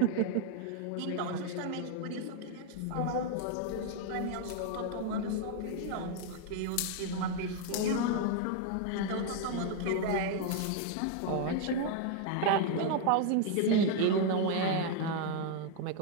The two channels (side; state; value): both; different; correlation 0.00